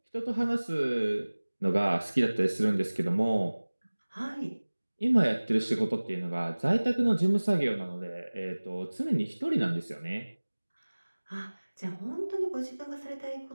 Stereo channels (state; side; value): inverted; both; correlation -1.00